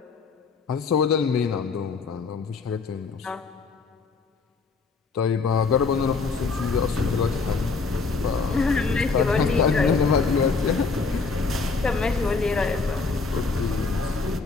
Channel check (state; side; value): quieter; right; 4.5 dB